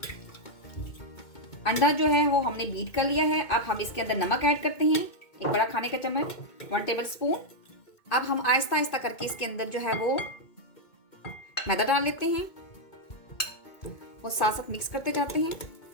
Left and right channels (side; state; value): right; late; 2.2 ms